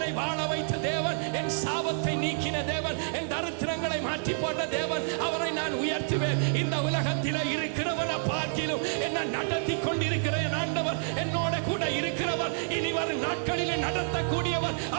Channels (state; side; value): silent; left; 59 dB below the other